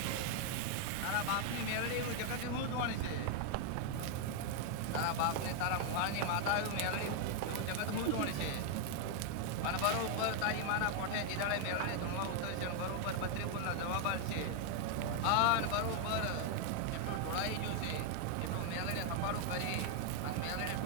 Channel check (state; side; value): different; both; correlation 0.00